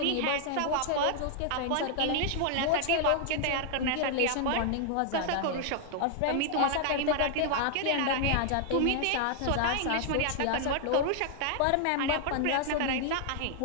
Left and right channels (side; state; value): both; different; correlation 0.00